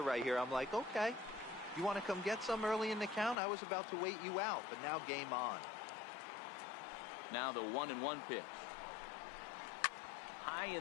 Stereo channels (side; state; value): right; drops out; at 3.4 s